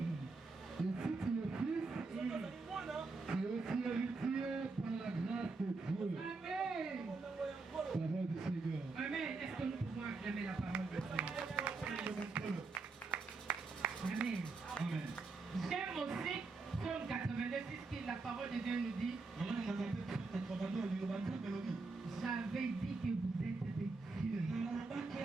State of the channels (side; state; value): left; quieter; 3.9 dB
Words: Et si tu es fils, tu es aussi héritier par la grâce de Dieu. Amen. Parole du Seigneur. Amen. Est-ce que nous pouvons acclamer la parole de Dieu? Amen. Amen. J'aime aussi Psaume 82, qui la parole de Dieu nous dit. J'avais dit que vous êtes des dieux,